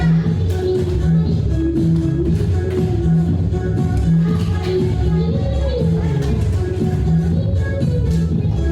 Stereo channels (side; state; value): both; identical; correlation 1.00